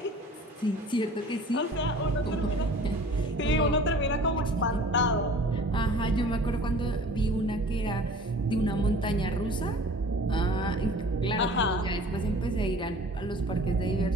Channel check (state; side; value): normal; both; correlation 0.46